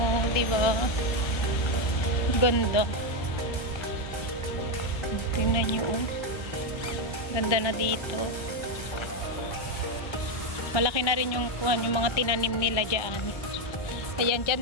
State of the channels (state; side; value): late; right; 1.3 ms